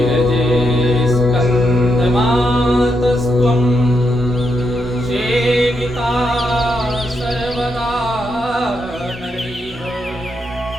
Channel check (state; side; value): normal; both; correlation 0.81